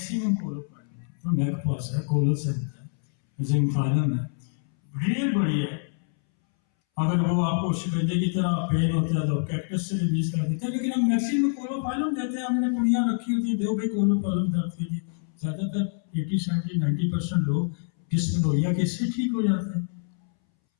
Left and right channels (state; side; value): silent; right; 61 dB below the other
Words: कोलोफाइलम। तो मेरे पास है कोलोसेंट है, जिंकफाइलम है, रियल बढ़िया है। अगर वो आपको शिकंजे की तरह पेन होता है तो कैक्टस से रिलीज कर देते हैं, लेकिन हम मैक्सिमम कोलोफाइलम देते हैं। हमने पुड़ियाँ रखी होती है, दो भी कोलोफाइलम दर्द के लिए। ज़्यादातर 80, 70, 90% लोग डिस्मेनोरिया के इससे ठीक हो जाते हैं।